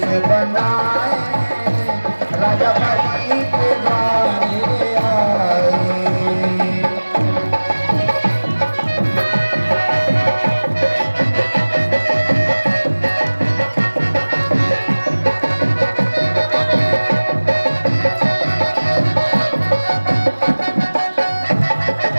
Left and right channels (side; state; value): both; inverted; correlation -1.00